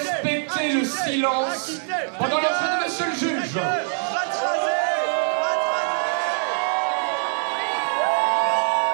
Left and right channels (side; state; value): left; silent; 63 dB below the other